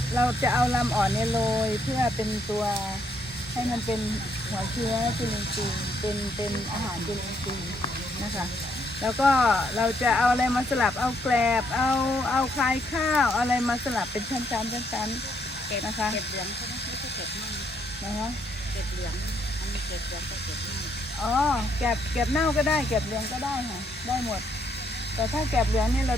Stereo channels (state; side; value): normal; both; correlation 0.72